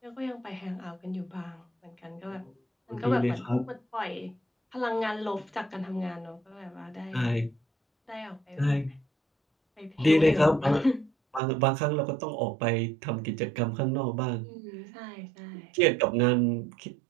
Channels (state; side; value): drops out; left; at 11.4 s